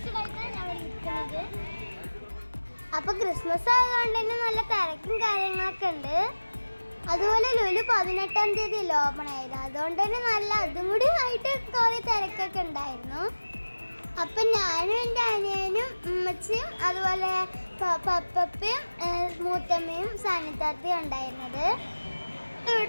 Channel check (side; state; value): both; inverted; correlation -1.00